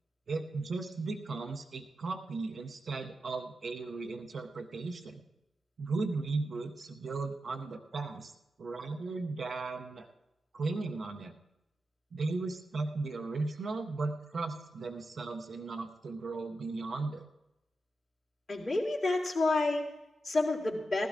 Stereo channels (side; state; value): both; normal; correlation 0.88